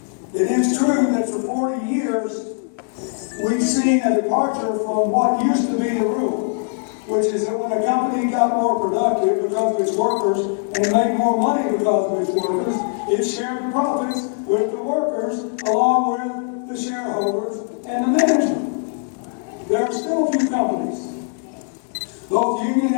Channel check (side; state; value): right; silent; 55 dB below the other